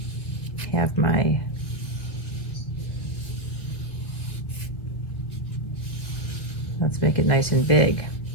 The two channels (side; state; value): right; late; 2.0 ms